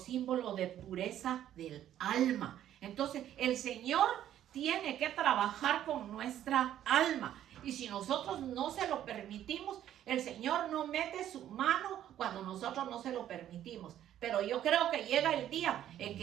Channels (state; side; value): quieter; left; 11.5 dB